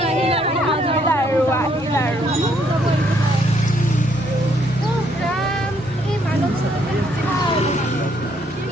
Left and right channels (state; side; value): normal; both; correlation 0.69